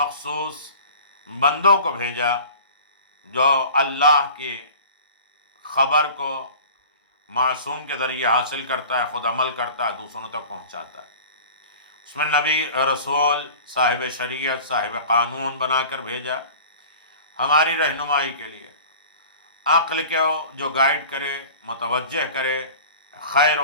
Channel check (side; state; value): both; inverted; correlation -0.41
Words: بندوں کو بھیجا جو اللہ کی خبر کو معصوم کے ذریعے حاصل کرتا ہے، خود عمل کرتا ہے، دوسروں تک پہنچاتا ہے. اس میں نبی، رسول، صاحب شریعت، صاحب قانون بنا کر بھیجا ہماری رہنمائی کے لیے. عقل کو جو گائیڈ کرے، متوجہ کرے، خیر